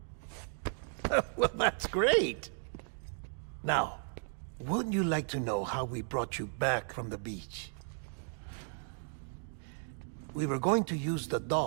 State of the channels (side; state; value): left; silent; 54 dB below the other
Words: Well, that's great. Now, wouldn't you like to know how we brought you back from the beach? We were going to use the